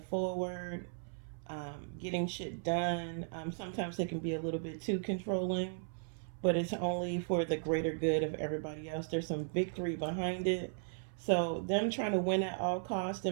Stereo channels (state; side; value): silent; left; 53 dB below the other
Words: forward, getting shit done. Sometimes they can be a little bit too controlling, but it's only for the greater good of everybody else. There's some victory behind it. So them trying to win at all costs,